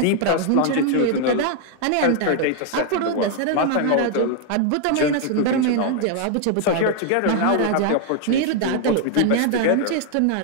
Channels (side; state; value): both; different; correlation 0.00